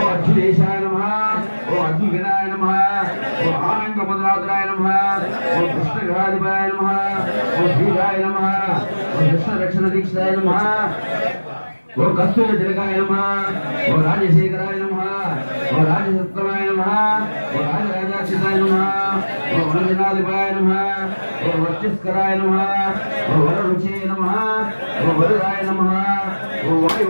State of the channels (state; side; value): inverted; both; correlation -1.00